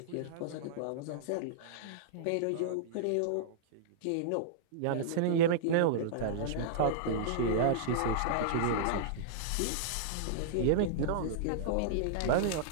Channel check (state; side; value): different; both; correlation -0.02